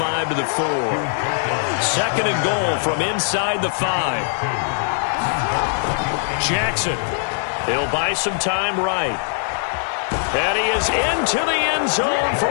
to the 4. 2nd and goal from inside the 5. Jackson. He'll buy some time right. And he is into the end zone for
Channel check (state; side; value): silent; right; digital silence